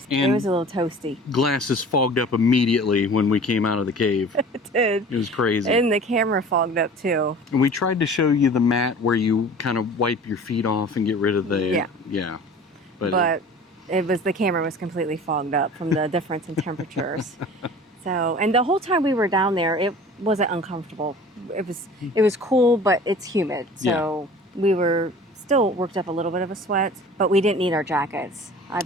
And it was a little toasty. Glasses fogged up immediately when we came out of the cave. It did. It was crazy. And the camera fogged up too. And we tried to show you the mat where you kind of wipe your feet off and get rid of the... Yeah. But it was, the camera was completely fogged up from the difference in temperatures. So, and the whole time we were down there, it wasn't uncomfortable. It was cool, but it's humid. So we were still worked up a little bit of a sweat, but we didn't need our jackets. I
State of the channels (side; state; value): both; normal; correlation 0.43